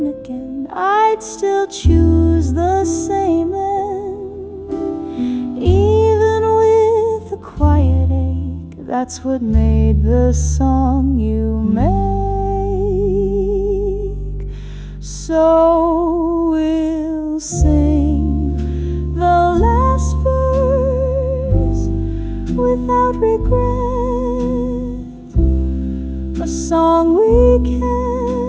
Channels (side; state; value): both; identical; correlation 1.00